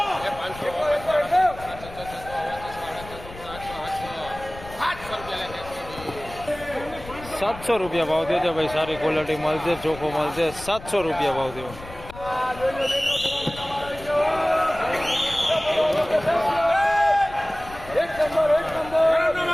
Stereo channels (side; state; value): left; noise; rumble, 15 dB below the sound